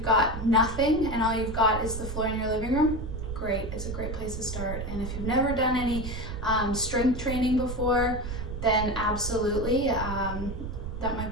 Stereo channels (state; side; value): noise; right; rumble, 6 dB below the sound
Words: got nothing and all you've got is the floor in your living room, great. It's a great place to start. And if you've never done any strength training before, then absolutely, that might